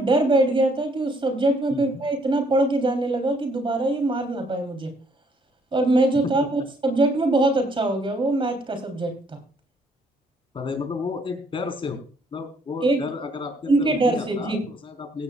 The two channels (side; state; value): both; normal; correlation 0.67